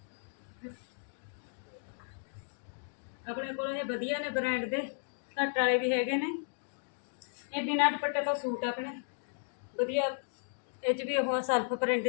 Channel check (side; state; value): right; silent; digital silence